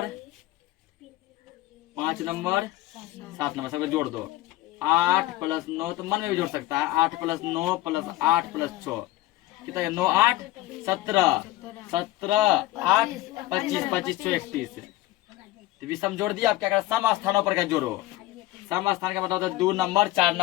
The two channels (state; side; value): quieter; right; 16.8 dB